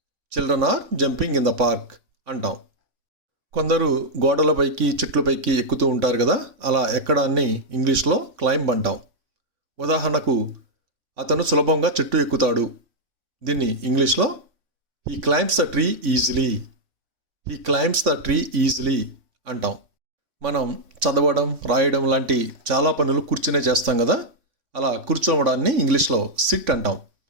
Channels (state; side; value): late; left; 3.5 ms